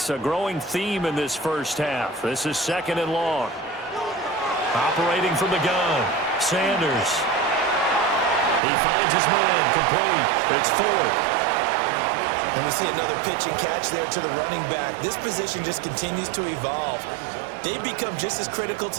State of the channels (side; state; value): left; drops out; at 8.6 s